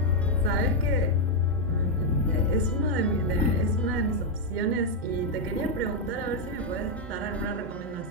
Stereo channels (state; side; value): normal; both; correlation 0.01